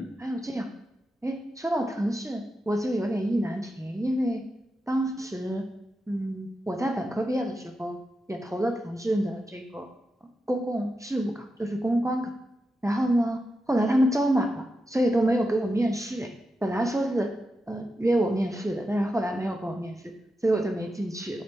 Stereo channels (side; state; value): both; normal; correlation 0.88